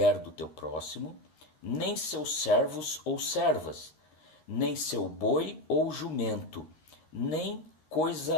do teu próximo, nem seus servos ou servas, nem seu boi ou jumento, nem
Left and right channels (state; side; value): late; right; 13 ms